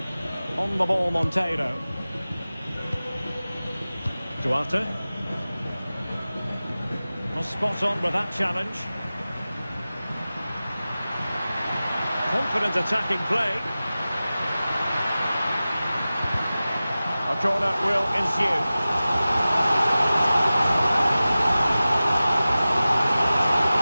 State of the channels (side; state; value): both; inverted; correlation -0.96